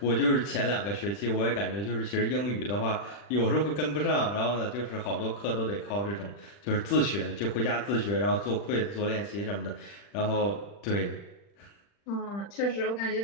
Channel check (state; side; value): late; right; 40 ms